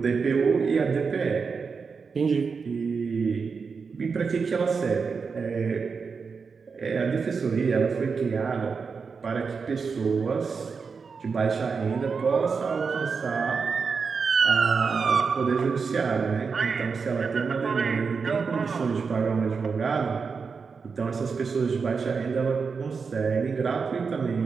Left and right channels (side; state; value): left; quieter; 5.3 dB